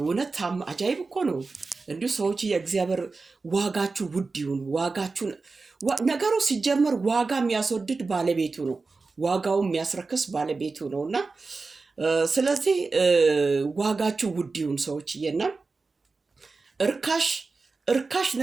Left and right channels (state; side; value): quieter; left; 4.0 dB